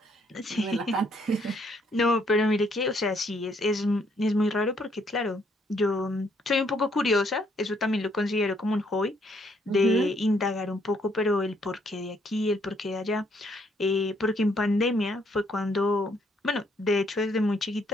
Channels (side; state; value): both; normal; correlation 0.69